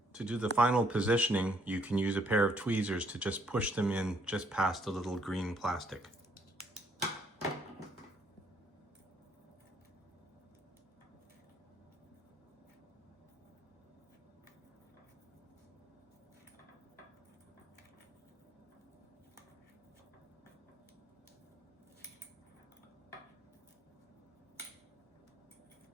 To do the final positioning, you can use a pair of tweezers to just push them in just past the little green plastic.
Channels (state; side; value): normal; both; correlation 0.67